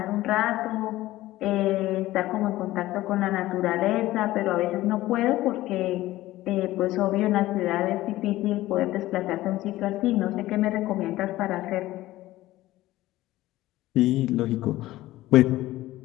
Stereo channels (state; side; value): quieter; right; 16.4 dB